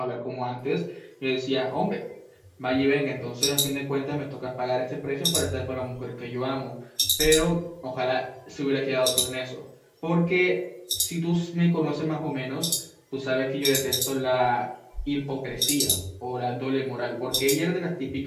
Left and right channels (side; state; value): both; identical; correlation 1.00